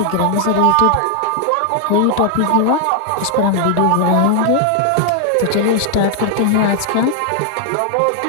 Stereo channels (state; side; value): different; both; correlation 0.00